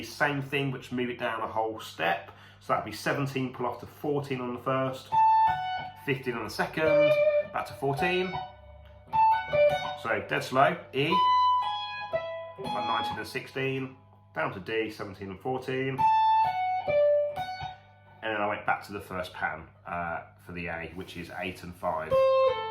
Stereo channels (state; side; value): identical; both; correlation 1.00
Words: same thing, but just move it down a whole step. So that'd be 17, pull off to 14 on the first, 15 on the second, back to 14. So dead slow, E, 19 and 16, down to D, 17 and 14. And then I went back to the first pattern for the A, which is 8 and 5.